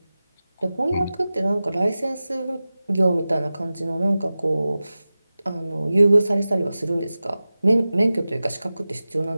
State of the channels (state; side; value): inverted; both; correlation -0.96